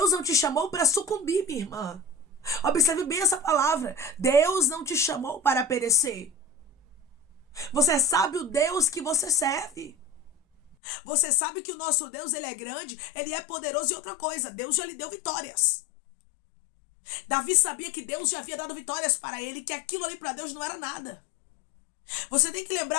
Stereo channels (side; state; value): right; drops out; at 10.8 s